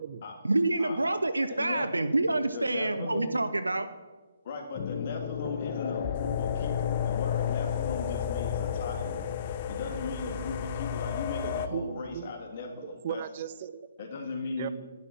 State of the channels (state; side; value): inverted; both; correlation -0.72